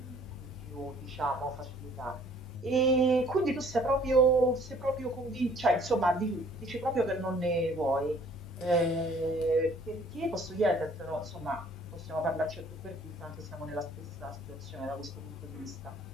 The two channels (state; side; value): normal; both; correlation 0.57